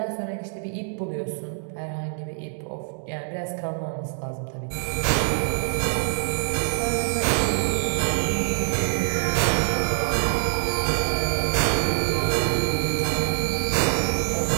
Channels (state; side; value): silent; left; digital silence